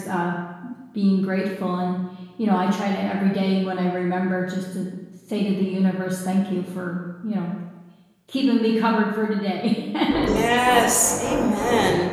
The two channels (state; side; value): identical; both; correlation 1.00